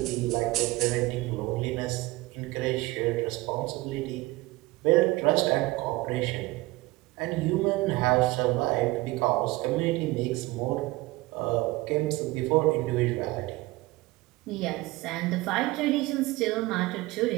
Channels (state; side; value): quieter; left; 20.4 dB